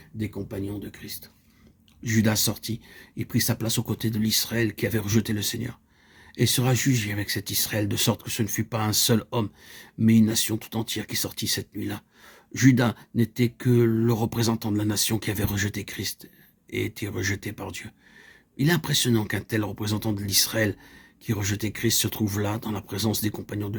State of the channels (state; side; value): identical; both; correlation 1.00